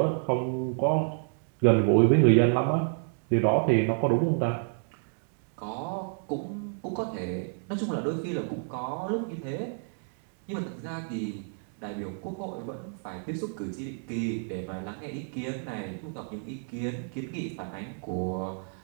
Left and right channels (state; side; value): silent; left; 57 dB below the other